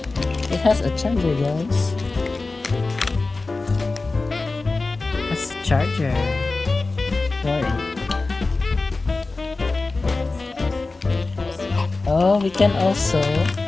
It has a charger, guys. It has a charger for it. Oh, we can also What's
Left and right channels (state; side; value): quieter; right; 3.6 dB